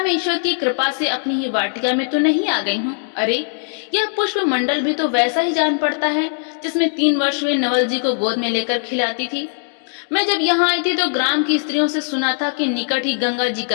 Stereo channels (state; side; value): silent; right; 65 dB below the other